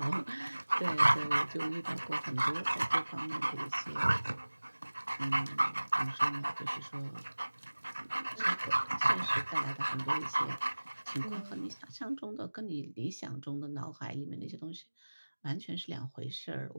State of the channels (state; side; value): inverted; both; correlation -1.00